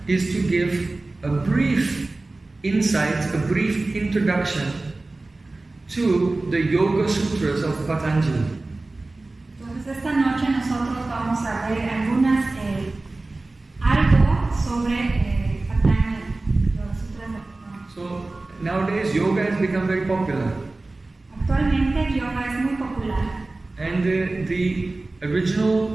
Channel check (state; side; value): quieter; left; 3.1 dB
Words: is to give a brief insight, a brief introduction to the Yoga Sutras of Patanjali. Entonces esta noche nosotros vamos a ver algo sobre Patanjali, los Sutras de Patanjali. So nowadays yoga has become very popular. Actualmente el yoga es muy popular. And the